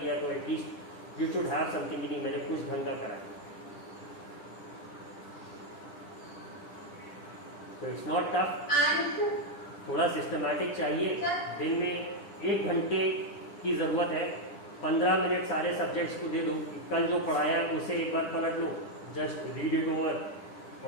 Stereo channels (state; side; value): late; right; 10 ms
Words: तो at least you should have something कि नहीं मैंने कुछ ढंग का करा। तो इट्स नॉट टफ, थोड़ा सिस्टमैटिक चाहिए। दिन में 1 घंटे की ज़रूरत है, 15 मिनट सारे सब्जेक्ट्स को दे दो, कल जो पढ़ाया उसे एक बार पलट लो, जस्ट रीड इट ओवर,